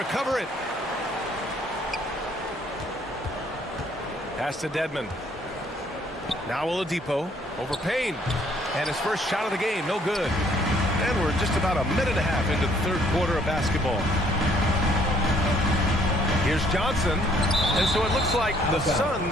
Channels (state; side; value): normal; both; correlation 0.63